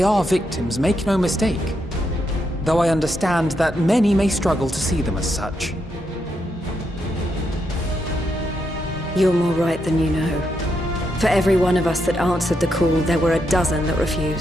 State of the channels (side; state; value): both; normal; correlation 0.81